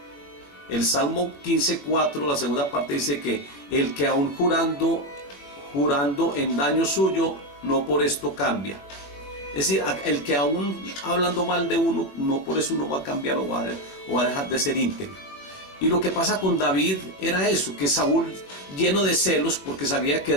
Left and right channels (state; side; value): late; right; 21 ms